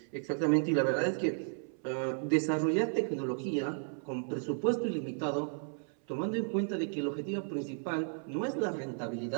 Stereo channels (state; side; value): silent; left; 55 dB below the other